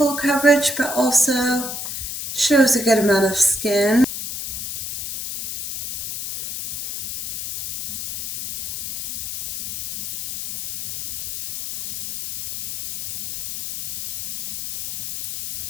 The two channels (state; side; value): noise; left; hiss, 6 dB below the sound